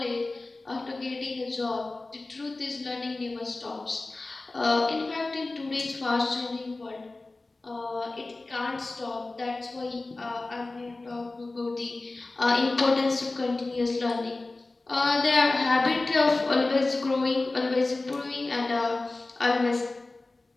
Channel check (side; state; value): right; quieter; 3.2 dB